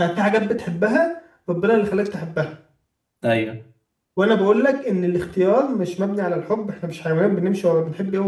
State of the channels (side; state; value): both; identical; correlation 1.00